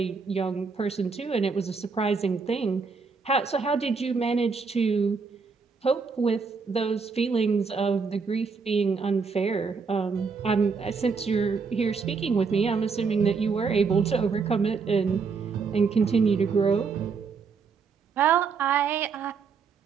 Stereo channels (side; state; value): left; quieter; 5.2 dB